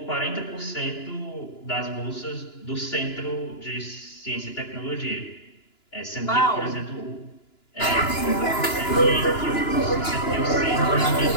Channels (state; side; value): late; right; 2.9 ms